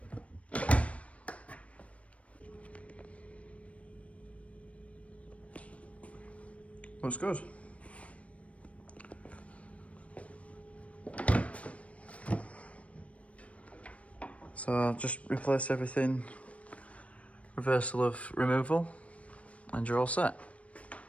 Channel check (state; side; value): late; right; 0.064 ms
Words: Looks good. So I'll just replace everything, reversal of removal, and you're all set.